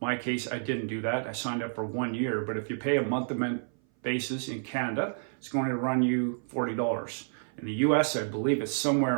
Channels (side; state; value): left; silent; 56 dB below the other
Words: case, I didn't do that. I signed up for 1 year, but if you pay a month-to-month basis in Canada, it's going to run you $40. In the US, I believe it's